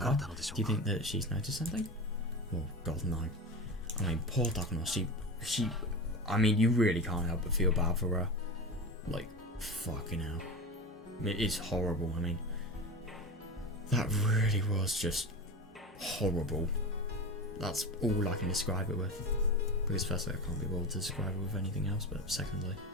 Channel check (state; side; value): normal; both; correlation 0.26